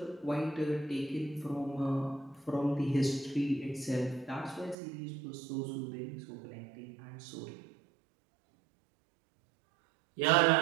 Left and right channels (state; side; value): drops out; left; at 4.8 s